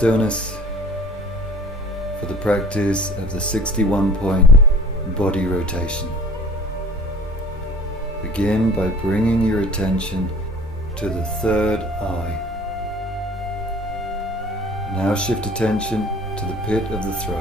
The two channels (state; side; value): normal; both; correlation 0.47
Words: for the practice of the 61-point body rotation. Begin by bringing your attention to the third eye. Now shift attention to the pit of the